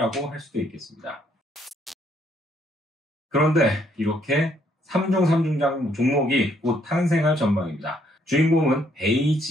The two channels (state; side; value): normal; both; correlation 0.69